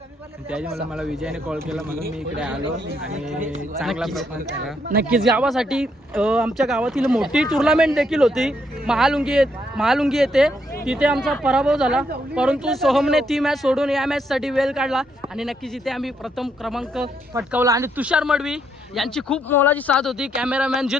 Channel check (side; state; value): both; normal; correlation 0.75